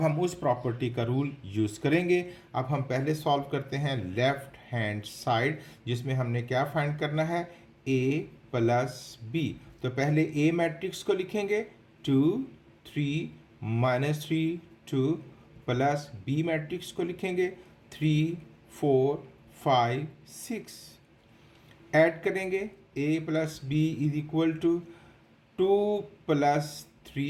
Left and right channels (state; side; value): identical; both; correlation 1.00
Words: हम उस प्रॉपर्टी का रूल यूज़ करेंगे। अब हम पहले सॉल्व करते हैं लेफ्ट हैंड साइड, जिसमें हमने क्या फाइंड करना है, A plus B। तो पहले A मैट्रिक्स को लिखेंगे, 2 3 -3 2, प्लस B मैट्रिक्स को लिखेंगे, 3 4 5 6। ऐड करेंगे, A plus B is equal to 2 +